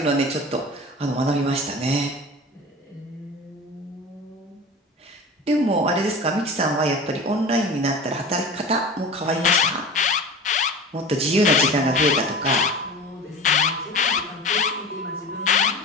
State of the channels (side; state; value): both; normal; correlation 0.34